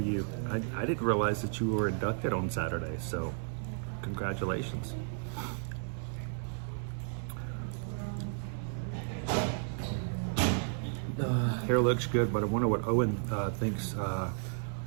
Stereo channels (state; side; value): silent; left; digital silence